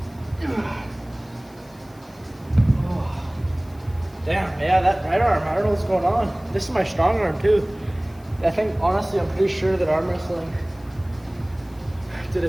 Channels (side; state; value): left; noise; hiss, 28 dB below the sound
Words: Oh. Damn, yeah, that right arm, I don't know what's going on. This is my strong arm too. I think, honestly, I'm pretty sure that arm wrestling did a